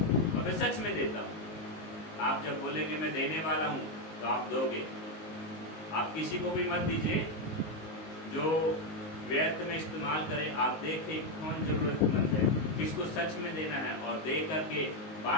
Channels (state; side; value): late; right; 19 ms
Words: और मैं सच में देता हूं। आप जब बोलेंगे मैं देने वाला हूं तो आप दोगे। आप किसी को भी मत दीजिए जो व्यर्थ में इस्तेमाल करे। आप देखें कौन जरूरतमंद है, किसको सच में देना है, और दे करके